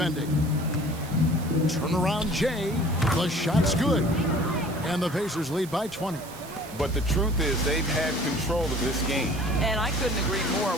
Turnaround Jay. The shot's good. And the Pacers lead by 20. But the truth is they've had control of this game. And I couldn't agree more.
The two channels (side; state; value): right; noise; hiss, 17 dB below the sound